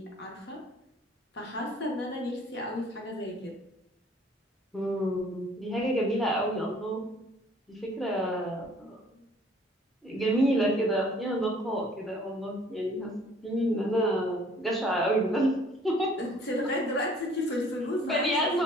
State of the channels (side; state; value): both; normal; correlation 0.56